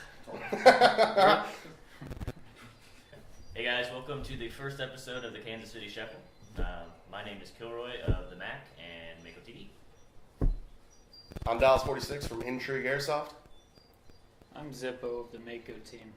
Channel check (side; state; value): both; identical; correlation 1.00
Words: Hey guys, welcome to the first episode of the Kansas City Shuffle. My name is Kilroy of the Mac and Mako TV. I'm Dallas 46 from Intrigue Airsoft. I'm Zippo of the Mako team,